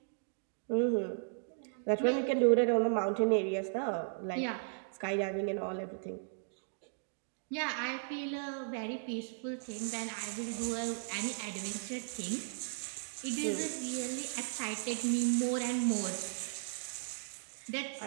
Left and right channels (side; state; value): left; silent; digital silence